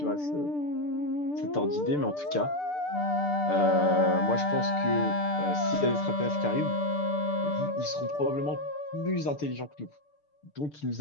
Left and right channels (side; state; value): right; late; 6.8 ms